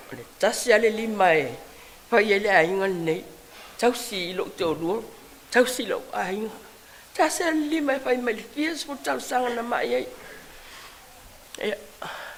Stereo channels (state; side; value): identical; both; correlation 1.00